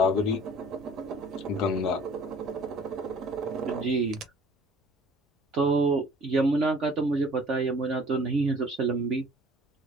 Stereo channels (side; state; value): both; normal; correlation 0.51